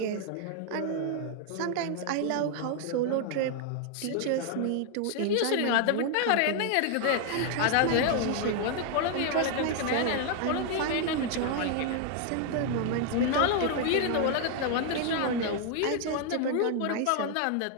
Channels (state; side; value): different; both; correlation 0.00